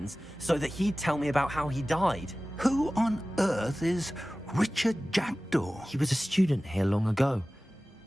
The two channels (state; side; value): normal; both; correlation 0.97